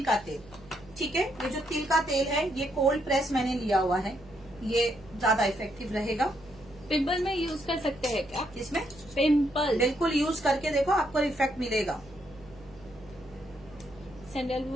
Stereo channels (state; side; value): noise; right; hum, 22 dB below the sound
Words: का तेल। ठीक है, ये जो तिल का तेल है ये कोल्ड प्रेस मैंने लिया हुआ है, ये ज्यादा इफेक्टिव रहेगा। पिंपल में यूज कर सकते हैं क्या? इसमें पिंपल बिल्कुल यूज करके देखो, आपको इफेक्ट मिलेगा।